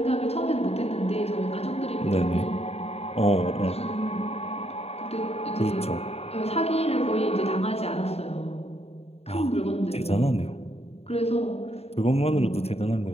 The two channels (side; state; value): right; late; 0.30 ms